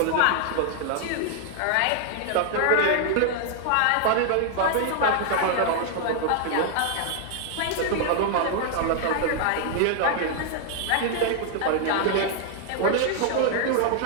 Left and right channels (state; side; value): different; both; correlation 0.00